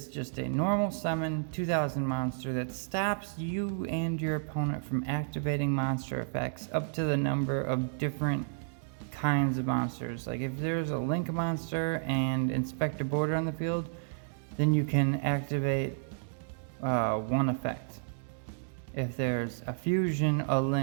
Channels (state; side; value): silent; left; digital silence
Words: just a normal summon 2000 monster that stops you and your opponent from activating monster effects up to the number of different kinds of monsters. Like if there's a Link monster and Inspector Border on the field, then you can activate one effect. If there's a Fusion, a